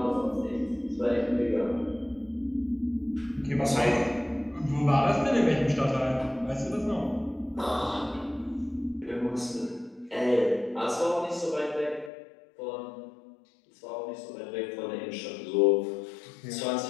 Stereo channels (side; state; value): right; drops out; at 12.1 s